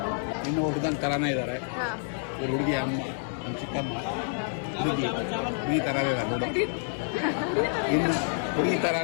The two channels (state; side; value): silent; right; 59 dB below the other